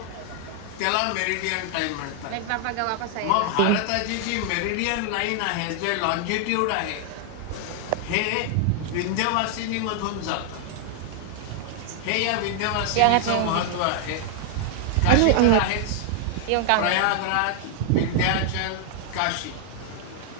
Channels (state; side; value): different; both; correlation 0.00